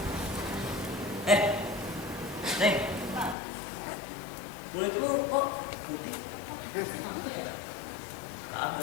Neng. Kulit lu kok putih?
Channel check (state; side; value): drops out; right; at 3.4 s